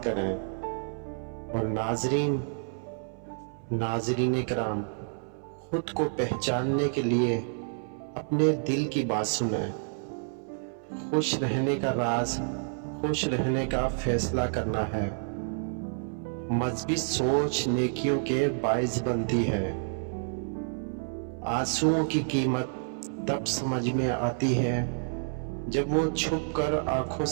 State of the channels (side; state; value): left; silent; 58 dB below the other